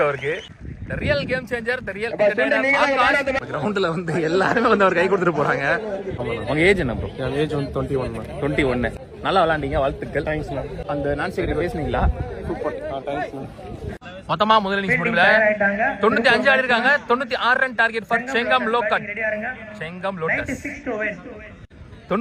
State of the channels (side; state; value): both; identical; correlation 1.00